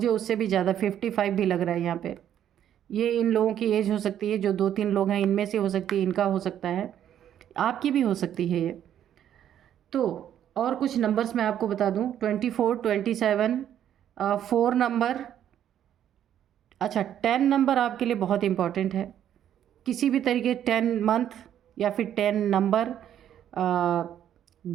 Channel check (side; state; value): left; quieter; 10.4 dB